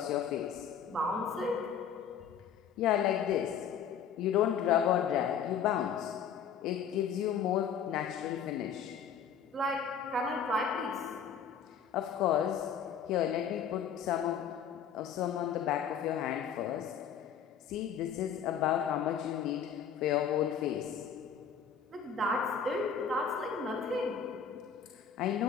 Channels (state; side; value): quieter; right; 7.5 dB